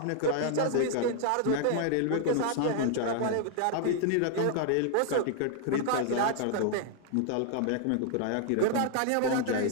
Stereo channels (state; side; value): different; both; correlation 0.00